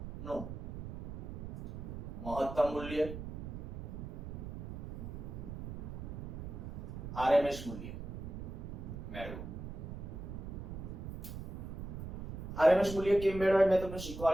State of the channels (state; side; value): noise; right; rumble, 9 dB below the sound